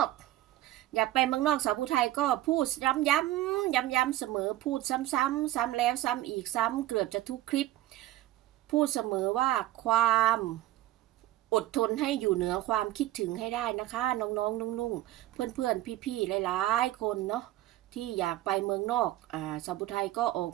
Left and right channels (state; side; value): quieter; left; 15.1 dB